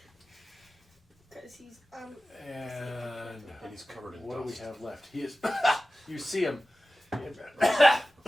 Because he's And and he's covered in what do we dust. have left? He is. You see him.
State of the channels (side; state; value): both; normal; correlation 0.95